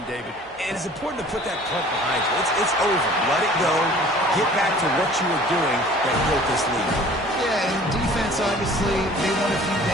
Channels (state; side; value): normal; both; correlation 0.49